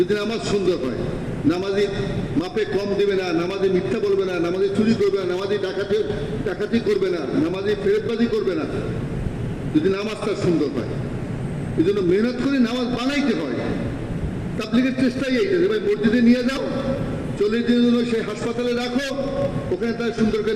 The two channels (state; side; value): identical; both; correlation 1.00